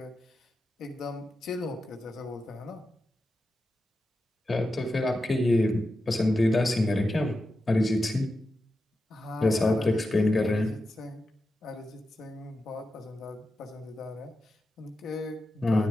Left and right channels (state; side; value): normal; both; correlation 0.90